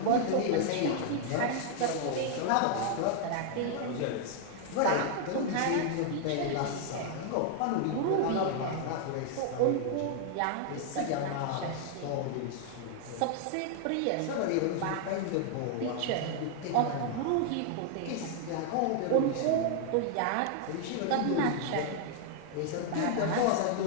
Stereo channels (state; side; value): different; both; correlation 0.00